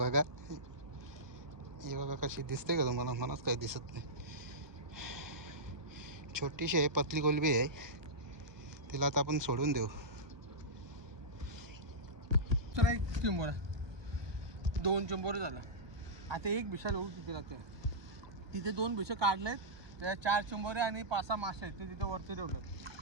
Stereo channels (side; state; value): left; late; 1.2 ms